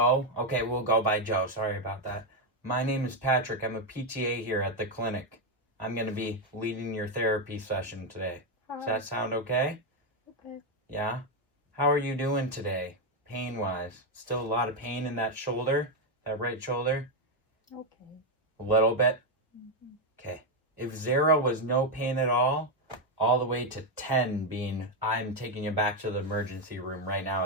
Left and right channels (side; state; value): both; normal; correlation 0.04